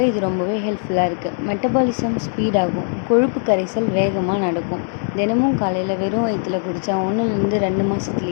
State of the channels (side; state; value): right; silent; 61 dB below the other